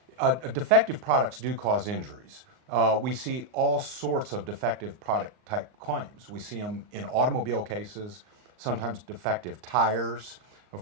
defective products do cause injuries. We see all sorts of defective product type claims. We see them in automobile cases, sometimes defective tires.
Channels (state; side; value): late; left; 38 ms